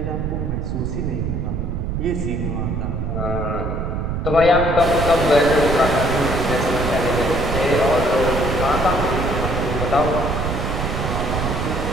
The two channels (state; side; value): noise; right; rumble, 2 dB below the sound